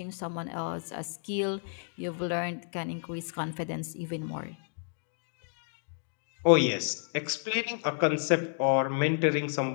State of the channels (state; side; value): silent; right; digital silence